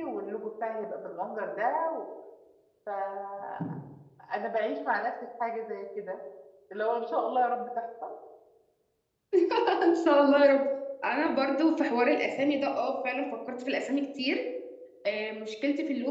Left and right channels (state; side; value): identical; both; correlation 1.00